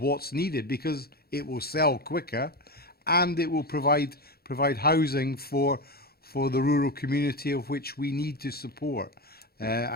needed, because it will sell quicker and it will provide housing for the rural community of which we need to support.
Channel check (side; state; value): right; late; 0.45 ms